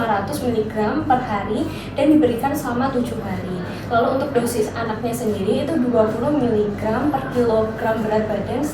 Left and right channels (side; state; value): both; identical; correlation 1.00